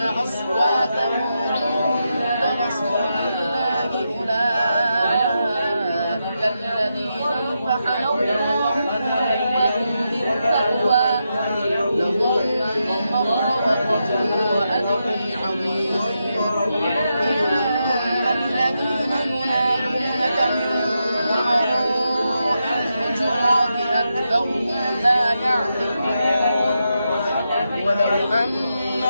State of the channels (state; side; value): inverted; both; correlation -0.85